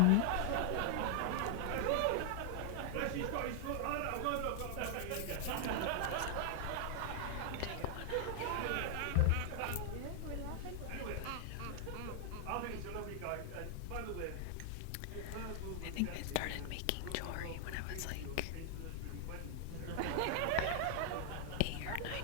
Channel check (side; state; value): both; different; correlation 0.00